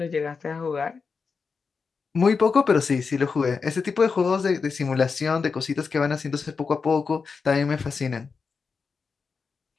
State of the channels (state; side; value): quieter; right; 5.1 dB